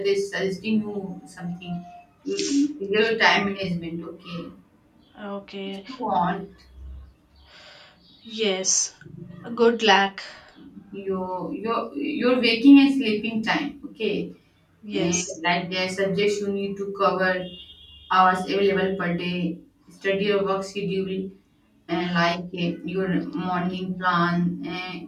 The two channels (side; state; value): both; identical; correlation 1.00